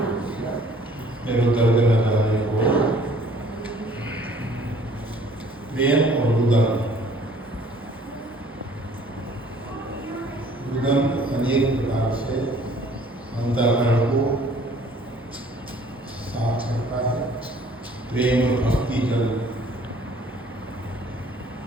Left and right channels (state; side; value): normal; both; correlation 0.55